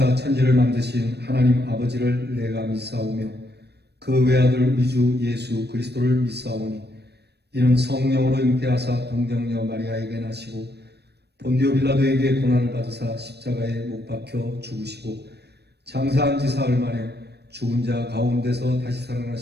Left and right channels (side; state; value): left; late; 0.48 ms